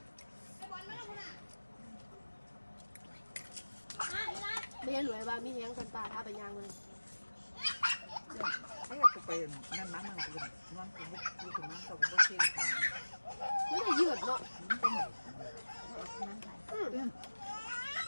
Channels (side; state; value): both; inverted; correlation -1.00